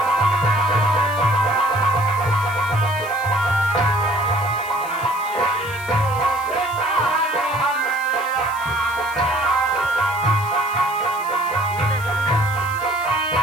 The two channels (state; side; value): noise; left; hiss, 17 dB below the sound